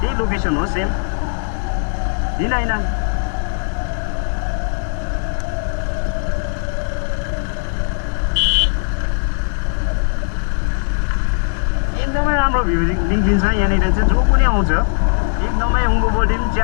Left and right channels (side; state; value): right; silent; digital silence